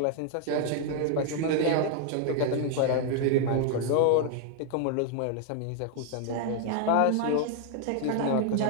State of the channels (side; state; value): both; different; correlation 0.00